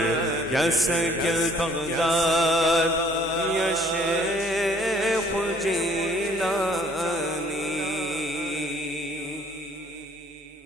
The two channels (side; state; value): both; normal; correlation 0.59